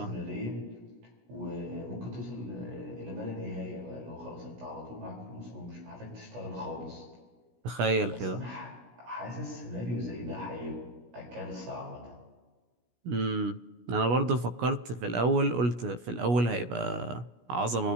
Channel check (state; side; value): late; left; 17 ms